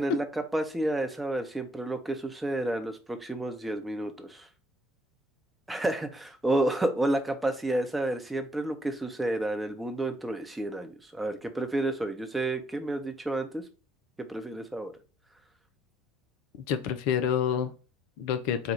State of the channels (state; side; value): normal; both; correlation 0.68